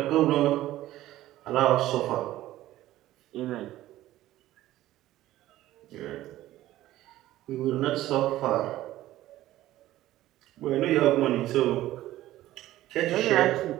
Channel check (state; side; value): quieter; left; 14.9 dB